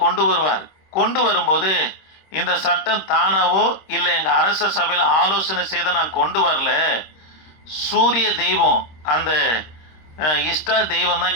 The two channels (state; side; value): late; right; 26 ms